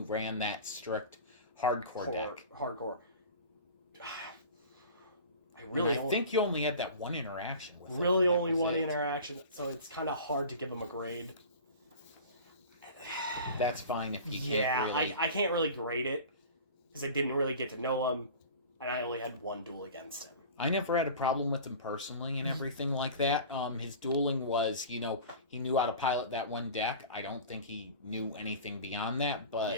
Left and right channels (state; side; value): inverted; both; correlation -0.38